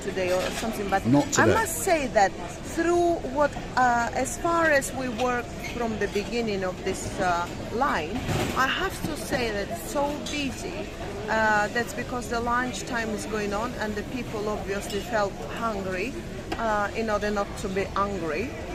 today or something, but Not today. I must say that through what, as far as we work from the beginning of this line, I have to say that it's so busy. That's because the lunch time is going on, and the people obviously felt hungry in order not to be hungry,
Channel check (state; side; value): identical; both; correlation 1.00